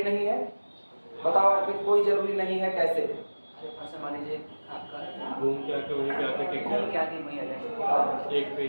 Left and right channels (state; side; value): inverted; both; correlation -1.00